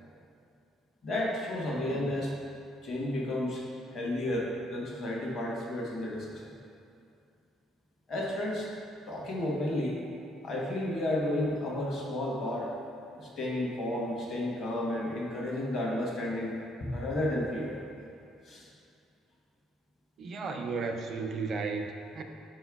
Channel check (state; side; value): normal; both; correlation 0.68